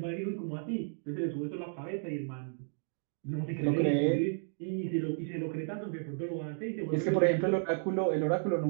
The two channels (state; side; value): silent; left; digital silence